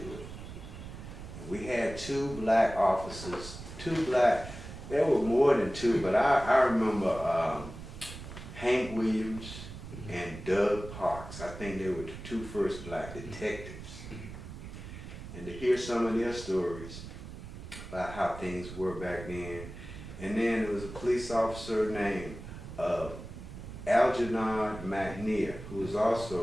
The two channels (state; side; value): noise; right; rumble, 12 dB below the sound